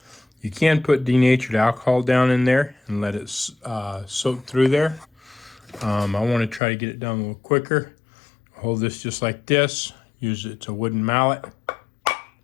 You can put denatured alcohol down in there and let it soak through there. I want to try to get it done a little quicker. Hold this just like this. Use it's a wooden mallet.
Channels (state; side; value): drops out; right; at 6.6 s